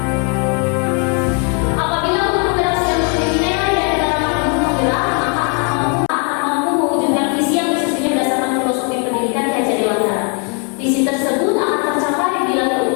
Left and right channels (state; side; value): quieter; right; 38.7 dB